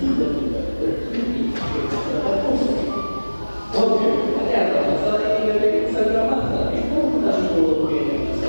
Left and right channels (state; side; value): inverted; both; correlation -1.00